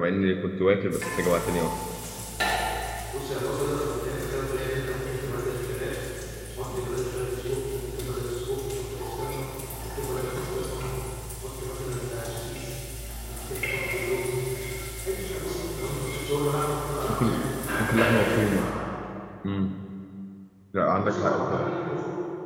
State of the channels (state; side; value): identical; both; correlation 1.00